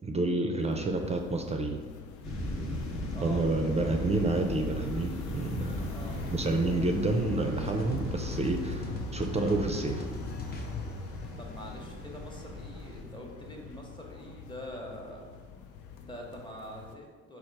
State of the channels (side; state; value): both; normal; correlation 0.59